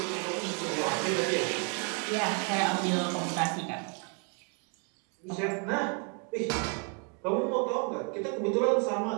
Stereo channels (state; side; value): quieter; left; 37.0 dB